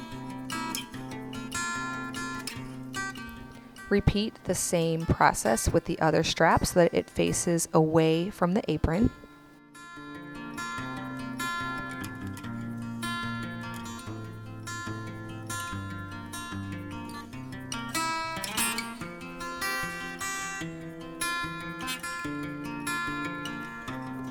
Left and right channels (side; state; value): both; identical; correlation 1.00